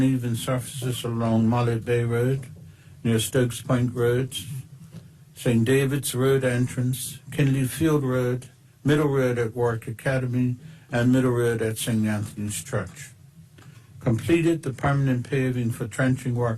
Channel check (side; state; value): both; identical; correlation 1.00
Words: surfaces along Mullet Bay Road, near Stokes Point Road, St. David's Road entrance, Kinley Field Road, Middle Road at Warwick Academy, and Middle Road at St. Anthony's Church. Completed the permanent paving for trenching